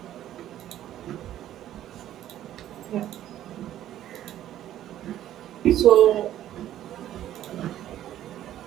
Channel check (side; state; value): left; quieter; 12.3 dB